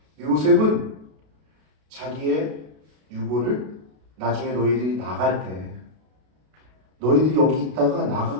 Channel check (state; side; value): late; left; 32 ms